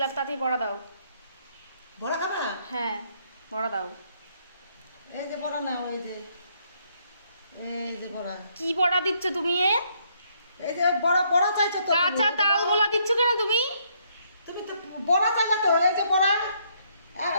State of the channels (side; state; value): both; inverted; correlation -0.70